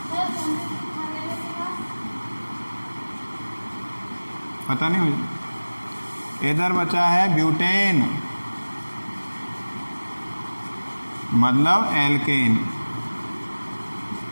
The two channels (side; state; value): both; inverted; correlation -1.00